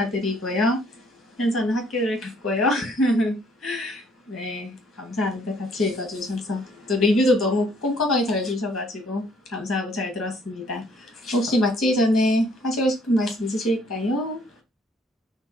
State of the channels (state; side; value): normal; both; correlation 0.63